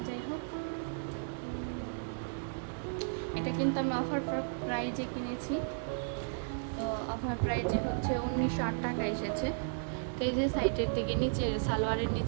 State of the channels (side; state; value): left; silent; digital silence